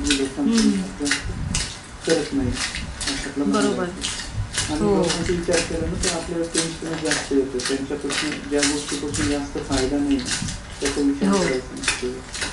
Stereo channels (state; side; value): identical; both; correlation 1.00